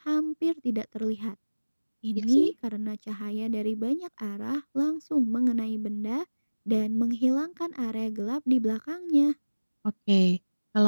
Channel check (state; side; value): inverted; both; correlation -1.00